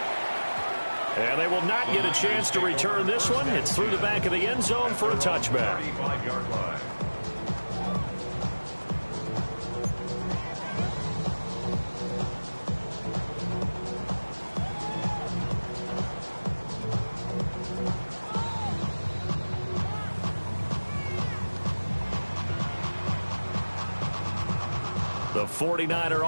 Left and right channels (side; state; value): both; inverted; correlation -1.00